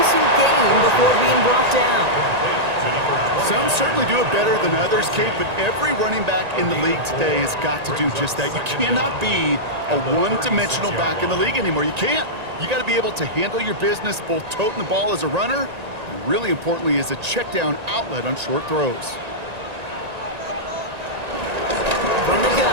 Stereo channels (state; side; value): late; left; 1.9 ms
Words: gain before being brought down. Some certainly do it better than others, Kate, but every running back in the league today has got to do just that. You cannot be a one-dimensional back in the league anymore. You can't. You got to be able to handle your business, both toting the ball as a runner, and really importantly as a check-down outlet on short throws. From the